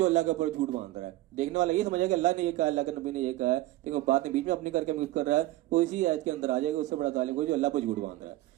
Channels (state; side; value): quieter; left; 16.8 dB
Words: अल्लाह के ऊपर झूठ बांध रहा है। देखने वाला ये समझेगा कि अल्लाह ने ये कहा, अल्लाह के नबी ने ये कहा है, लेकिन वो बात में बीच में अपनी करके मिक्स कर रहा है, वो इसी आयत के अंदर आ जाएगा। उससे बड़ा जालिम कोई जो अल्लाह पर झूठ बांध रहा है।